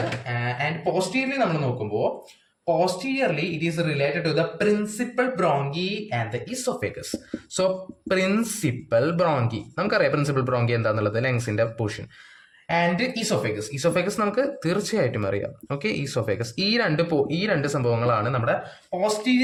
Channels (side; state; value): both; identical; correlation 1.00